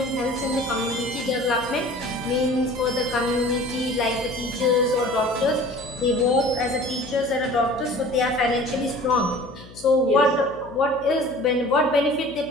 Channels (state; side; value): noise; left; hum, 20 dB below the sound